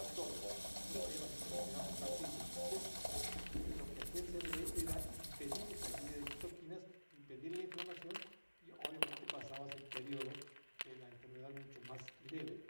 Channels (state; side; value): inverted; both; correlation -1.00